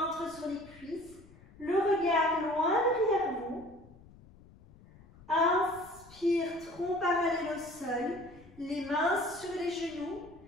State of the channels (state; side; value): noise; left; rumble, 23 dB below the sound